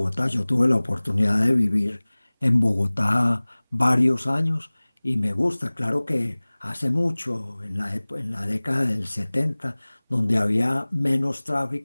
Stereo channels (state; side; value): inverted; both; correlation -1.00